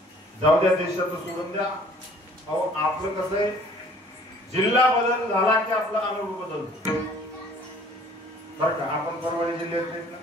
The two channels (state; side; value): normal; both; correlation 0.55